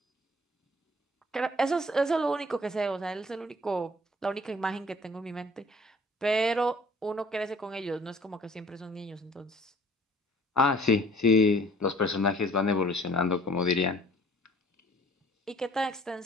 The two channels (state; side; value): normal; both; correlation 0.53